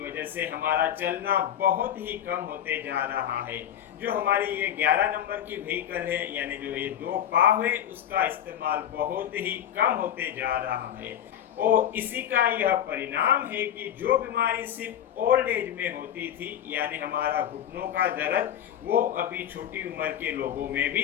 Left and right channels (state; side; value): quieter; right; 10.3 dB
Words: वजह से हमारा चलना बहुत ही कम होते जा रहा है। जो हमारी ये 11 नंबर की व्हीकल है, यानी जो ये दो पाव है, उसका इस्तेमाल बहुत ही कम होते जा रहा है। और इसी का यह परिणाम है कि जो बीमारी सिर्फ ओल्ड एज में होती थी, यानी हमारा घुटनों का दर्द, वो अभी छोटी उम्र के लोगों में